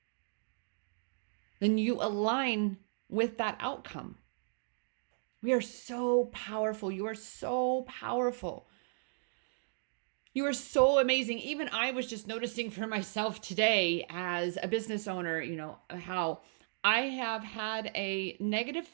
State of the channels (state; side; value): silent; left; digital silence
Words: then you align with that outcome. We are so powerful. You are so powerful. You are so amazing. Even I was just noticing for myself today as a business owner, how I have had a negative